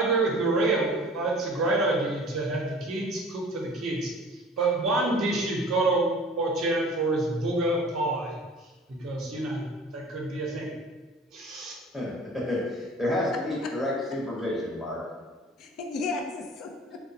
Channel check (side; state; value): both; normal; correlation 0.45